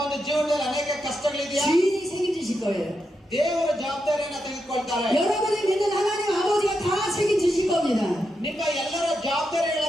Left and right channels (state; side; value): normal; both; correlation 0.85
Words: ಒಂದು ಜೀವನದಲ್ಲಿ ಅನೇಕ ಕಷ್ಟಗಳಿದೆಯಾ? 주인이 책임지실 거예요. ದೇವರ ಜವಾಬ್ದಾರಿಯನ್ನ ತೆಗೆದುಕೊಳ್ತಾರೆ. 여러분이 믿는 하나님 아버지가 다 책임지실 겁니다. ನಿಮ್ಮ ಎಲ್ಲರ